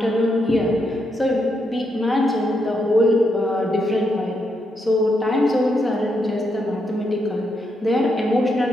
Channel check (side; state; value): both; normal; correlation 0.80